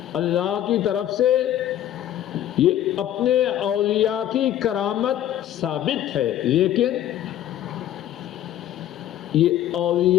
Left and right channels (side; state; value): right; quieter; 11.8 dB